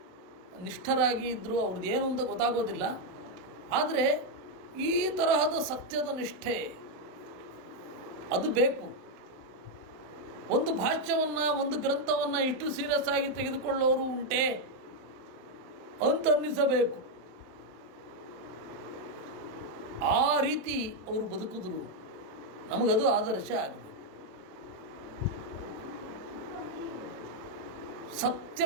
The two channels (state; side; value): late; left; 27 ms